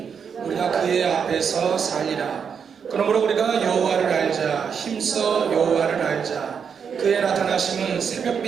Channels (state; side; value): quieter; left; 6.8 dB